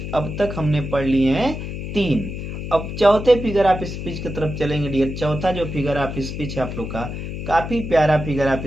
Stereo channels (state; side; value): noise; left; hum, 6 dB below the sound